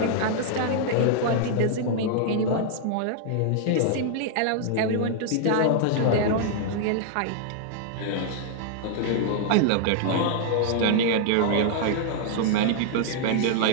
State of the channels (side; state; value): both; different; correlation -0.01